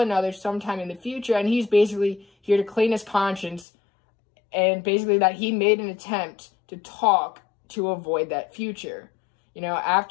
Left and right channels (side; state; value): right; drops out; at 3.7 s